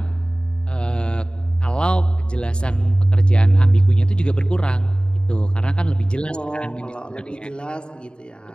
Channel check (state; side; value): late; right; 0.051 ms